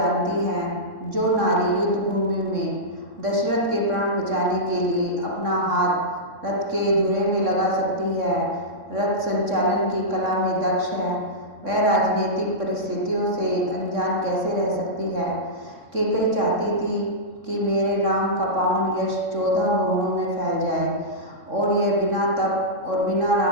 हैं, जो नारी युद्ध भूमि में दशरथ के प्राण बचाने के लिए अपना हाथ रथ के धुरे में लगा सकती है, रथ संचालन की कला में दक्ष है, वह राजनीतिक परिस्थितियों से अनजान कैसे रह सकती है। कैकई चाहती थी कि मेरे राम का पावन यश 14 भुवनों में फैल जाए, और यह बिना तप और बिना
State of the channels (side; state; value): left; late; 3.6 ms